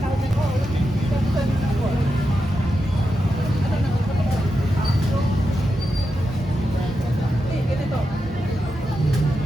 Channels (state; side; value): normal; both; correlation 0.88